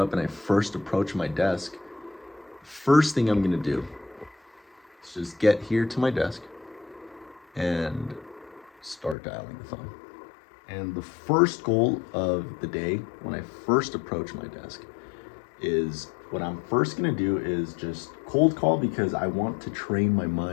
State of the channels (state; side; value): drops out; right; at 9.2 s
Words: and I first approach my desk, first thing I'm gonna do is just get here to my desk and start dialing the phone. And the first goal of the day when I first approach my desk is what I'm first gonna do is just cold call because I want to train my